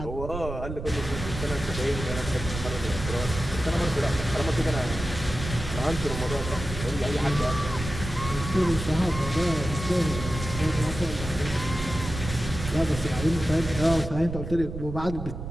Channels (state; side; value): noise; right; rumble, 7 dB below the sound